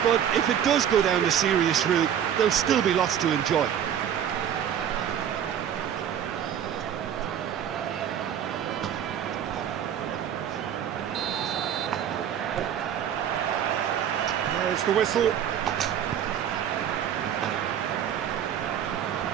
but if it does go down the serious route, there'll still be lots to enjoy. There's the whistle.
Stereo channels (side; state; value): left; quieter; 9.4 dB